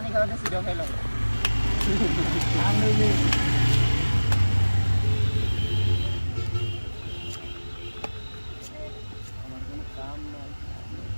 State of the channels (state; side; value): inverted; both; correlation -1.00